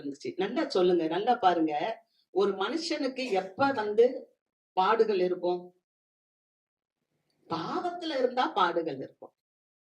நல்லா சொல்லுங்க, நல்லா பாருங்க. ஒரு மனுஷனுக்கு எப்ப பாடுகள் இருக்கும்? பாவத்துல இருந்தா பாடுகள் இருக்கும்.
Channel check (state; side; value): identical; both; correlation 1.00